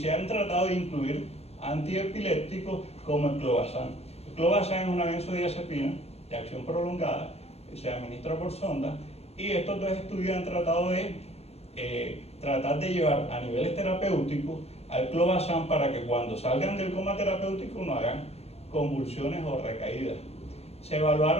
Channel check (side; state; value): right; late; 0.30 ms